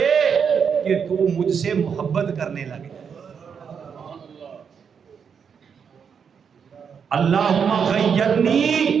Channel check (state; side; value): quieter; left; 6.8 dB